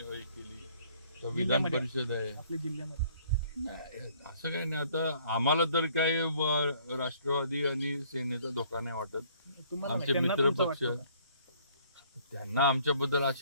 केली, तर विधान परिषद आहे आपल्या जिल्ह्यामध्ये नाही, असं काही नाही. आता आम्हाला तर काय राष्ट्रवादी आणि सेनेचा धोका नाही वाटत. आमचे मित्र पक्ष, त्यांना आमच्याबद्दल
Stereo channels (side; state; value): both; inverted; correlation -0.60